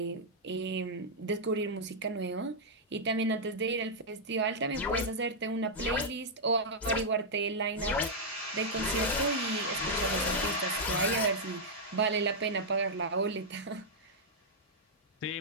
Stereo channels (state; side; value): normal; both; correlation -0.06